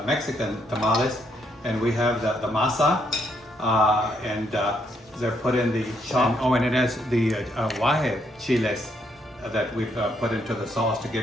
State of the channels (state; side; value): normal; both; correlation 0.74